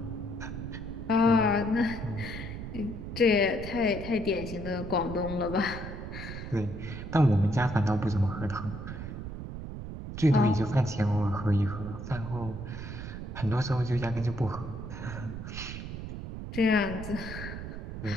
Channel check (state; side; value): noise; right; rumble, 8 dB below the sound